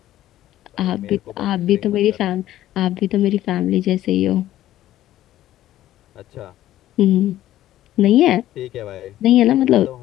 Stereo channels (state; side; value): quieter; right; 13.6 dB